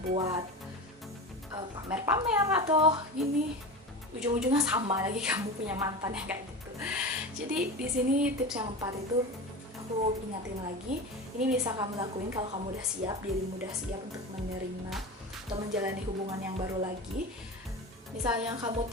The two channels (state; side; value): normal; both; correlation 0.27